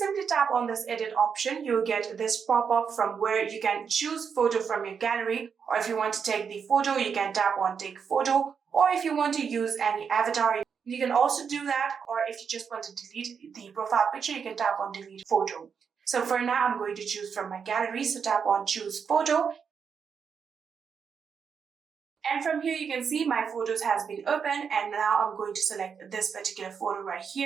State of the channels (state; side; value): quieter; left; 6.5 dB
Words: tap on this edit option, you'll get this pop-up from where you can choose photo from your gallery, or if you want to take the photo, you can tap on take photo, or if you want to use any avatar, you can also do that, or if you just want to delete the profile picture, you can tap on delete photo. So for now, I'm going to choose from my gallery, so tap on choose photo. And from here, you can see my photos has been opened, and now I'm going to select this particular photo right